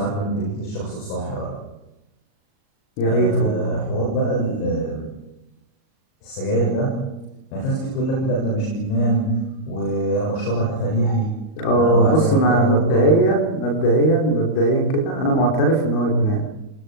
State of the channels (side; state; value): right; late; 38 ms